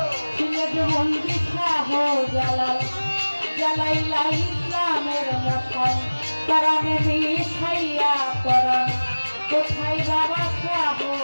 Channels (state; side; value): inverted; both; correlation -1.00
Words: সিলেট বন্দি শাহ জালাল জালাইলা ইসলামের মশাল তারানে মিঠাইয়া পরাণ কোথায় বাবা শাহ